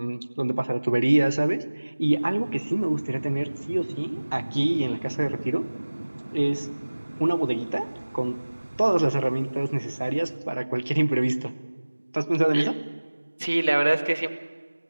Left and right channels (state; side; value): inverted; both; correlation -1.00